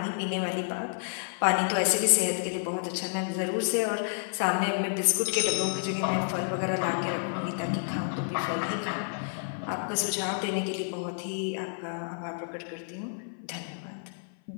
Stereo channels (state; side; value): silent; right; 55 dB below the other